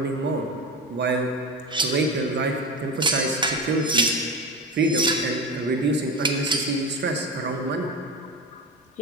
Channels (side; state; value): both; normal; correlation 0.23